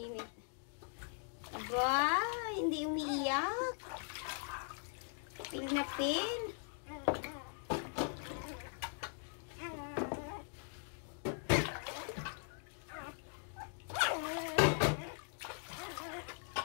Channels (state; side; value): silent; right; 51 dB below the other